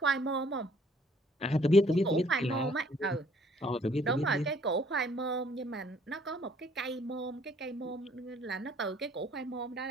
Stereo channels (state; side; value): normal; both; correlation 0.61